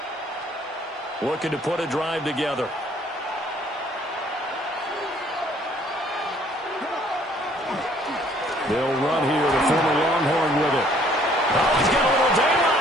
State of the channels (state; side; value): normal; both; correlation 0.60